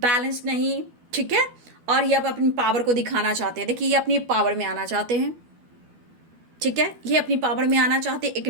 नहीं, ठीक है, और ये अब अपनी पावर को दिखाना चाहते हैं। देखिए ये अपनी पावर में आना चाहते हैं, ठीक है, ये अपनी पावर में आना चाहते हैं, एक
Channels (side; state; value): left; late; 12 ms